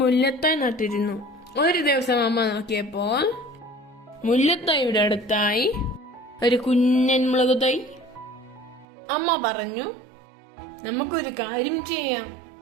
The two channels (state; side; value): drops out; left; at 8.8 s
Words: മുല്ലത്തൈ നട്ടിരുന്നു. ഒരു ദിവസം അമ്മ നോക്കിയപ്പോൾ മുല്ലത്തൈയുടെ അടുത്തായി ഒരു കുഞ്ഞൻ മുളക് തൈ. അമ്മ പറഞ്ഞു, നമുക്കൊരു കാര്യം ചെയ്യാം,